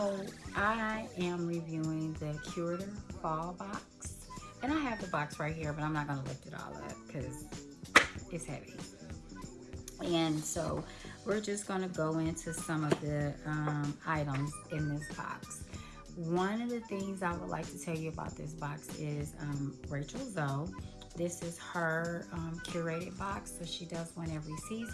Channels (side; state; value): both; identical; correlation 1.00